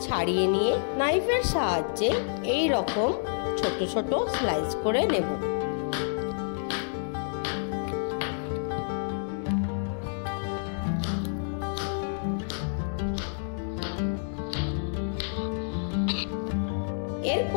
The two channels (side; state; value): right; silent; digital silence